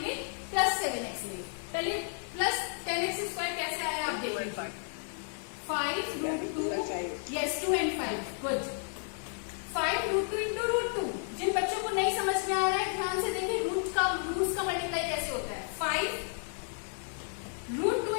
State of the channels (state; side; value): silent; right; 56 dB below the other